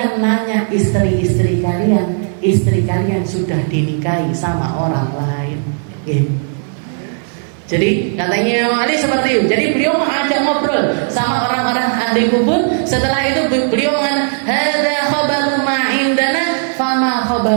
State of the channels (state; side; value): silent; left; 58 dB below the other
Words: nanya istri kalian sudah dinikahi sama orang lain. Jadi katanya Imam Ali seperti itu. Jadi beliau mengajak ngobrol sama orang-orang ahli kubur. Setelah itu beliau mengatakan, hadza khabaru ma indana fama